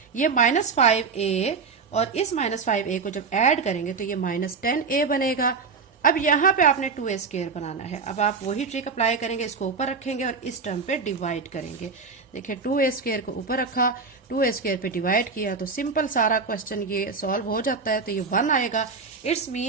ये माइनस 5a और इस माइनस 5a को जब ऐड करेंगे तो ये माइनस 10a बनेगा। अब यहाँ पे आपने 2a स्क्वायर बनाना है। अब आप वही ट्रिक अप्लाई करेंगे, इसको ऊपर रखेंगे और इस टर्म पे डिवाइड करेंगे। देखिए 2a स्क्वायर को ऊपर रखा, 2a स्क्वायर पे डिवाइड किया तो सिंपल सारा क्वेश्चन ये सॉल्व हो जाता है। तो ये 1 आएगा, इट्स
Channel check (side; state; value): left; quieter; 4.9 dB